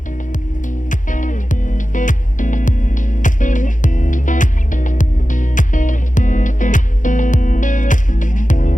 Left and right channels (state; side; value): late; right; 0.37 ms